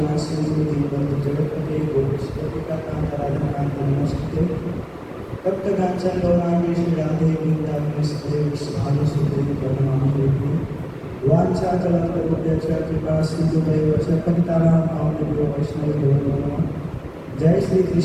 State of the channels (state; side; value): identical; both; correlation 1.00